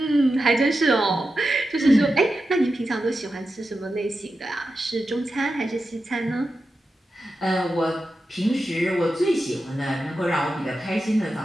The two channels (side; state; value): both; normal; correlation 0.90